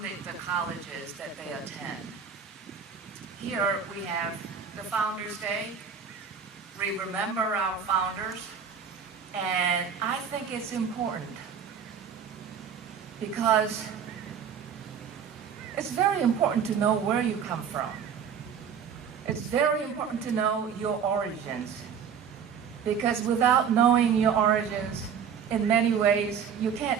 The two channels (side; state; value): left; quieter; 7.2 dB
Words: the colleges that they attend. Here we have the Founders Day. We remember our founders, and I think it's important because it's very important to know where you come from. It's very important to know your origins, because without knowing your origins, in many ways, you